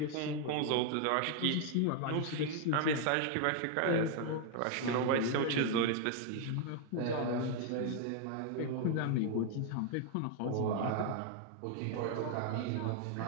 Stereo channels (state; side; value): different; both; correlation 0.00